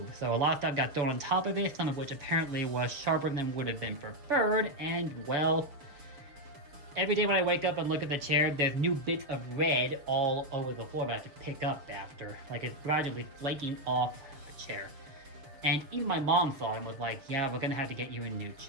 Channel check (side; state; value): left; late; 7.0 ms